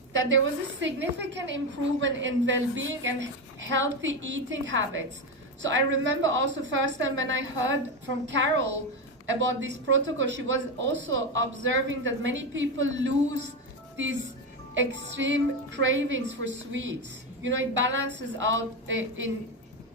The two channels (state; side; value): normal; both; correlation 0.14